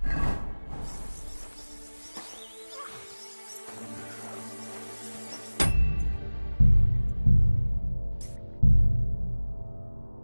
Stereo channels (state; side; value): inverted; both; correlation -1.00